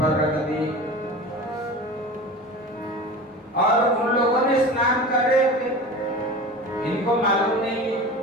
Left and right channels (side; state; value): both; normal; correlation 0.34